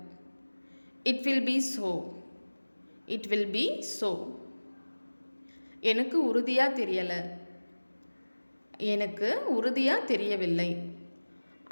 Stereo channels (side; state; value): both; inverted; correlation -1.00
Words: It will be so. It will be so. எனக்கு உறுதியாக தெரியலை. எனக்கு உறுதியாக தெரியவில்லை.